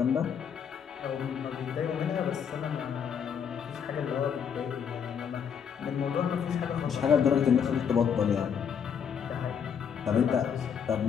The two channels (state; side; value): quieter; right; 7.5 dB